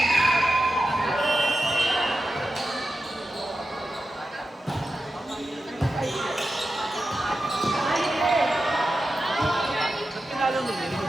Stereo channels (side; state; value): both; normal; correlation 0.91